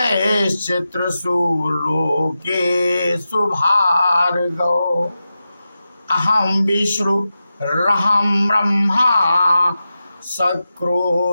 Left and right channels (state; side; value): inverted; both; correlation -0.92